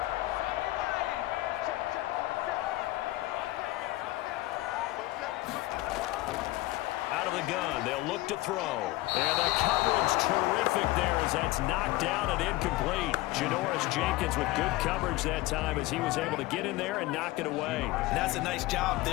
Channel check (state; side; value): quieter; right; 18.6 dB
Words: Gun. They'll look to throw. And the coverage terrific there as that's knocked down and incomplete. Janoris Jenkins with good coverage that time as he was able to get in there and knock it away. And that's a nice job